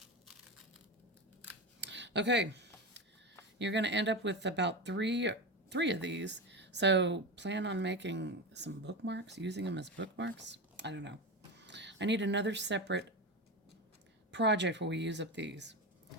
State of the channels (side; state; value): both; normal; correlation 0.20